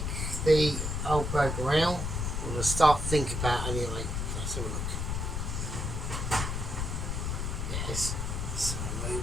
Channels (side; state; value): left; noise; rumble, 2 dB below the sound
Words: the old burger out. I'm going to start thinking about anyway. Let's have a look. Yes. So